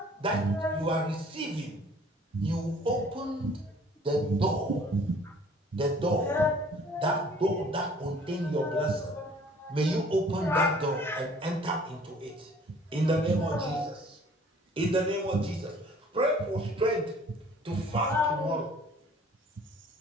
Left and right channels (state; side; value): normal; both; correlation 0.54